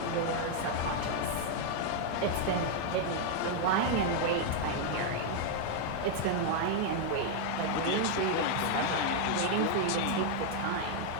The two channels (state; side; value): different; both; correlation 0.00